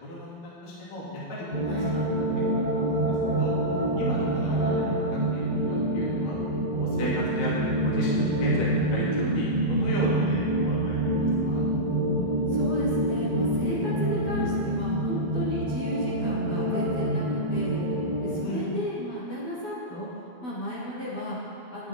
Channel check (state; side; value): late; right; 12 ms